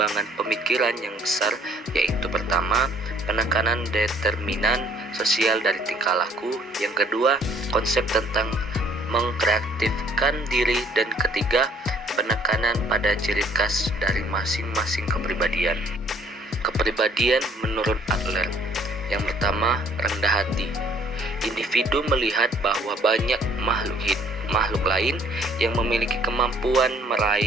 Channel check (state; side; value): normal; both; correlation 0.60